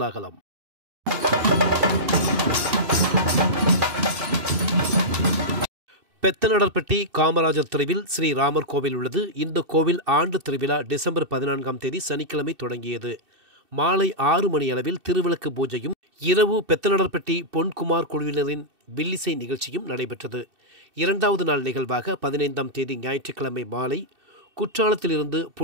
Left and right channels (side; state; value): left; late; 2.6 ms